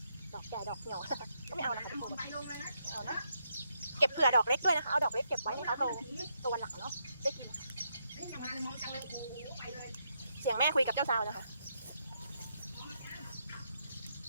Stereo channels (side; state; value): both; inverted; correlation -0.79